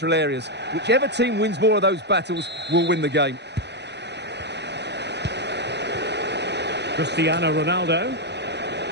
areas. Whichever team wins more of those battles will win the game. Cristiano Ronaldo.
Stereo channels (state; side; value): late; left; 0.50 ms